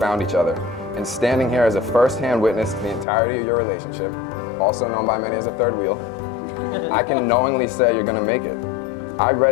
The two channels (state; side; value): drops out; right; at 3.1 s